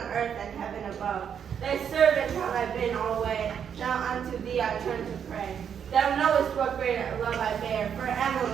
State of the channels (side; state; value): left; quieter; 8.0 dB